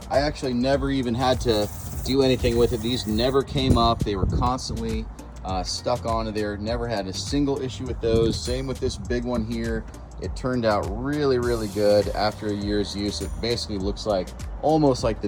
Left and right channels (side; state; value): both; identical; correlation 1.00